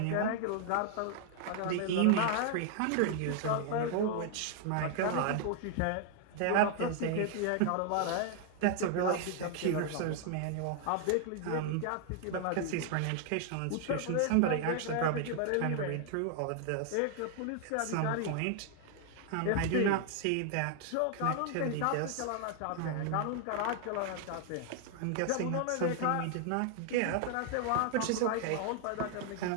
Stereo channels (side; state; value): both; different; correlation 0.00